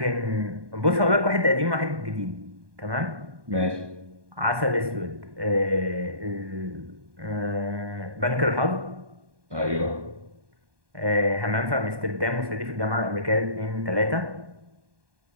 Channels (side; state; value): left; late; 1.2 ms